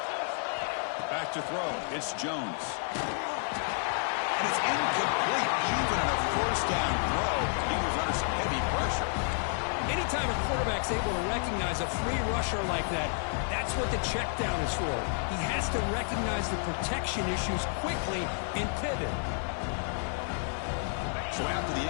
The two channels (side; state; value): right; silent; 57 dB below the other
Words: Back to throw. It's Jones. And it's incomplete. Even on a first down throw, he was under some heavy pressure. Anytime a quarterback's able to recognize a free rusher like that, that's what the check down is for. He has to recognize the protection issues quickly and pivot. So after the